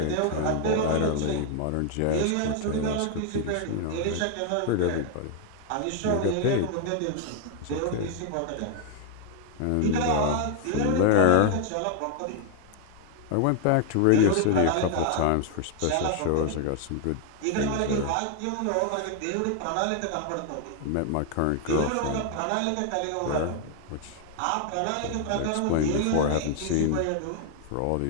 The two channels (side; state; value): both; different; correlation 0.00